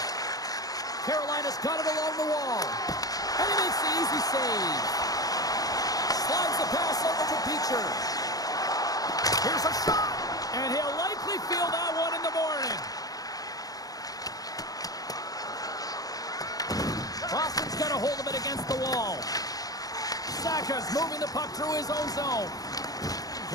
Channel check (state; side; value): late; right; 0.18 ms